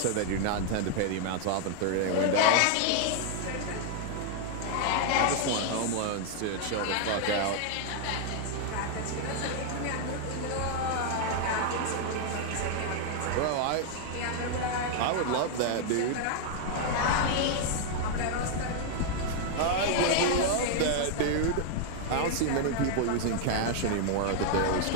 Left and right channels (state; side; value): different; both; correlation 0.00